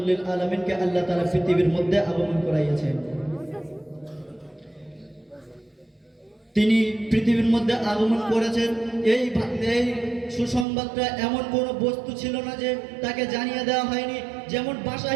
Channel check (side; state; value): left; drops out; at 10.7 s